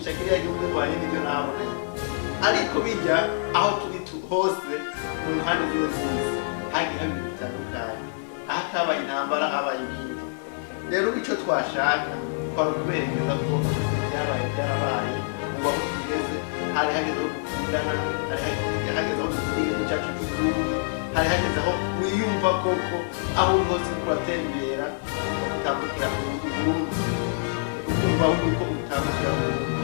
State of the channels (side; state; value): right; silent; digital silence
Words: kiriya gihugu bivanye n'ibyo nabonanye ariko bijya aho turi hose mu mpande zino z'isi hagiye haba ibintu bitandukanye aho atabaye intambara habaye ibindi rero icyo twashaka twari ukuberekeza ko ibyabaye byarabaye ubu aho tugeze hari hageze aho dukundana hari hageze aho dukunda igihugu cyacu cy'u Burundi hari hageze aho wiyumva koko aho uri hose uriko uratembera ukumva kutambukira Uburundi ukumva yuko utambukira Uburundi